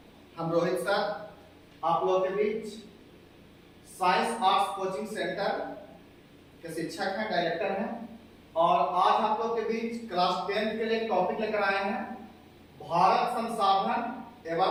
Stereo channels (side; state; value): both; identical; correlation 1.00